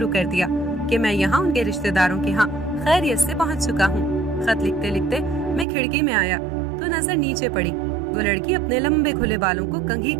कर दिया कि मैं यहाँ उनके रिश्तेदारों के यहाँ खैरियत से पहुँच चुका हूँ। खत लिखते लिखते मैं खिड़की में आया तो नजर नीचे पड़ी। वो लड़की अपने लंबे खुले बालों को कंघी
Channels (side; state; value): left; drops out; at 5.7 s